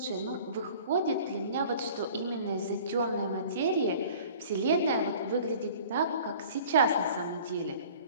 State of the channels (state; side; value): inverted; both; correlation -0.47